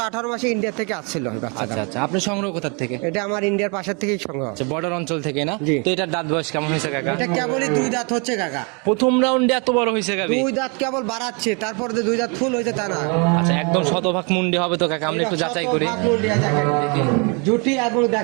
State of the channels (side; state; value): left; quieter; 33.5 dB